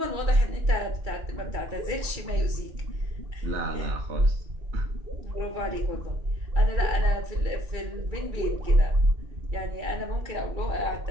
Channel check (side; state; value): left; late; 2.3 ms